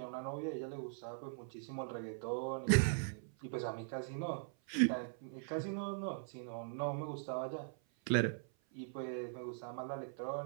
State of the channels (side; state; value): left; silent; 50 dB below the other